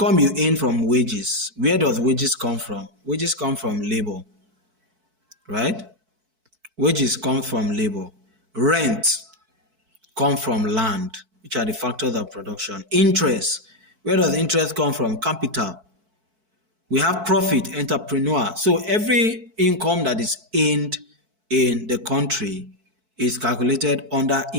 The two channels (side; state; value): left; late; 4.6 ms